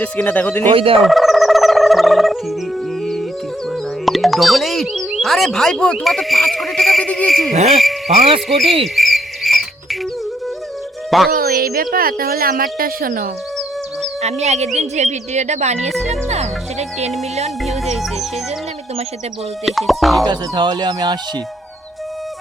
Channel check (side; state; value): both; normal; correlation 0.74